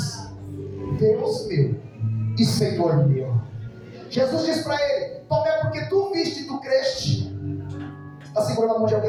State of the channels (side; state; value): both; identical; correlation 1.00